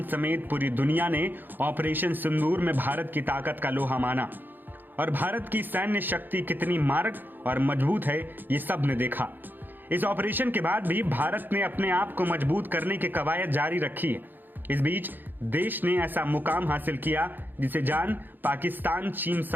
समेत पूरी दुनिया ने ऑपरेशन सिंदूर में भारत की ताकत का लोहा माना और भारत की सैन्य शक्ति कितनी मारक और मजबूत है ये सब ने देखा। इस ऑपरेशन के बाद भी भारत ने अपने आप को मजबूत करने की कवायद जारी रखी है। इस बीच देश ने ऐसा मुकाम हासिल किया जिसे जान पाकिस्तान, चीन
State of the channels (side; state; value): left; late; 0.091 ms